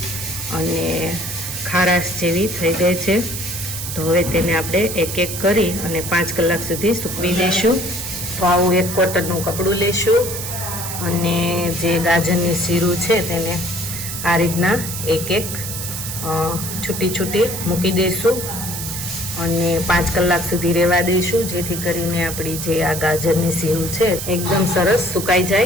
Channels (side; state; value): right; noise; hiss, 6 dB below the sound